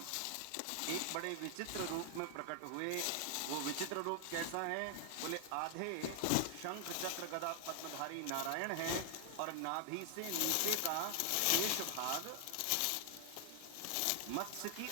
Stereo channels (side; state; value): both; different; correlation 0.00